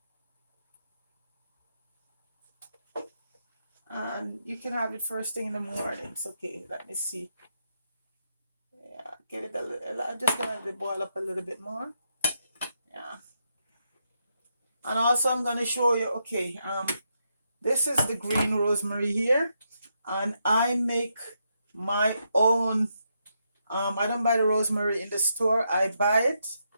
And you can have it first thing in the morning. It's okay. Let me see. Yeah, get it a little. I'm just gonna let it boil up a little bit more. Yeah. And also I'm gonna show you. Okay. This is the green rosemary here, and I make my own. I don't buy the rosemary in the store. I buy it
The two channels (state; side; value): inverted; both; correlation -0.81